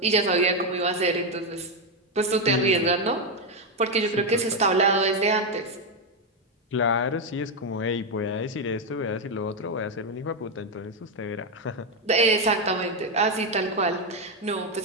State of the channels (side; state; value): both; normal; correlation 0.06